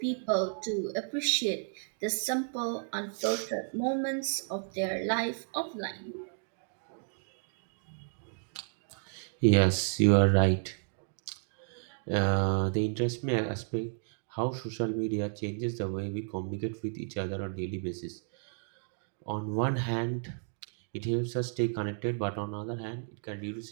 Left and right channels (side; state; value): left; silent; 56 dB below the other